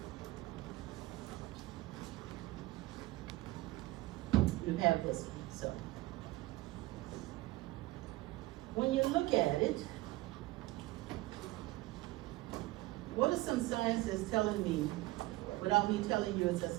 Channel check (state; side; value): quieter; left; 19.1 dB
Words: You have this one, so. When you look at it, what are some signs that's telling me, without me telling you it's